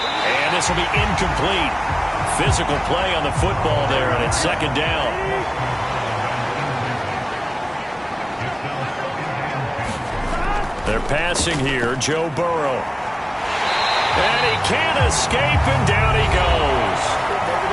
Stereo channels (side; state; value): both; identical; correlation 1.00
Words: this will be incomplete. Physical play on the football there, and it's second down. They're passing here, Joe Burrow. And he can't escape, and down he goes.